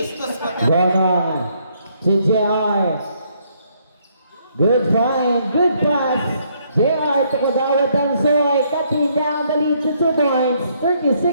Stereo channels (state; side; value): inverted; both; correlation -0.70